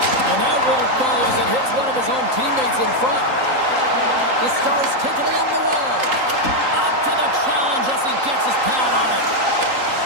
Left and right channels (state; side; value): late; left; 3.8 ms